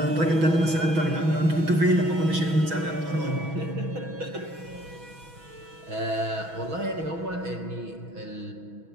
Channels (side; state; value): left; late; 6.2 ms